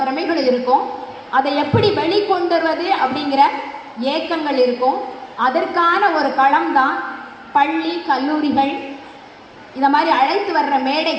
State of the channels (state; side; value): identical; both; correlation 1.00